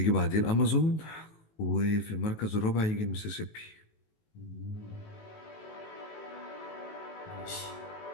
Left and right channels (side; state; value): right; late; 19 ms